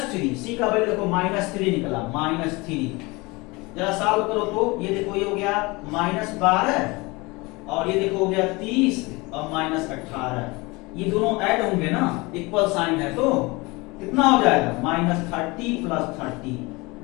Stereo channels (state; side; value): quieter; right; 24.5 dB